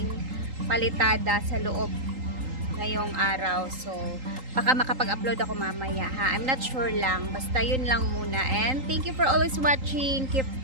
palitada sa loob ngayong araw. So baka makapag-upload ako mamaya ha. I'm not sure lang. Basta yun lang muna. And thank you for always watching.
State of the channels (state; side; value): late; left; 3.8 ms